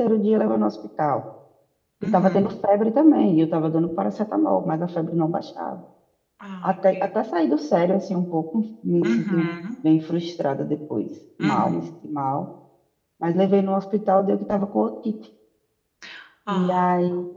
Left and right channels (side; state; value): both; identical; correlation 1.00